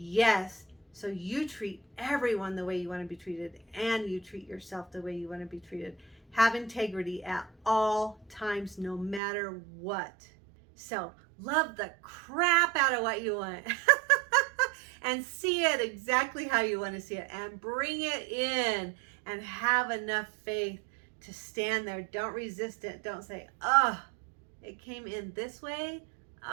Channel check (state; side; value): drops out; left; at 9.2 s